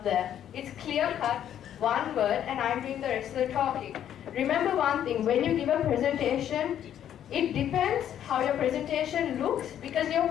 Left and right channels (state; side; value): quieter; right; 10.3 dB